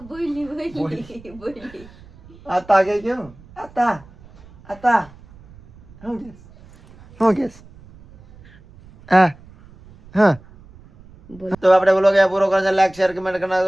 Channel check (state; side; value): noise; right; rumble, 23 dB below the sound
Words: બોલી આતા કે કેમ આતા હું કેસ હા તો આપણે વ્લોગ અહીંયા પૂરો કરો છે. લાઈક શેર કમેન્ટ કરી